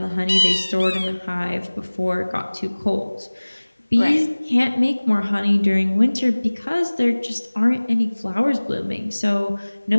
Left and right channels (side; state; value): both; inverted; correlation -1.00